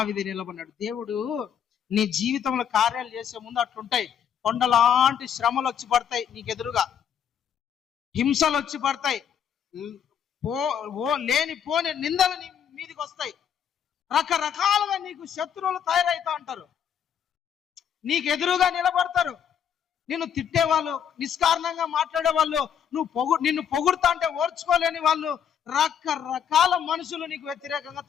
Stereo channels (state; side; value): quieter; right; 8.5 dB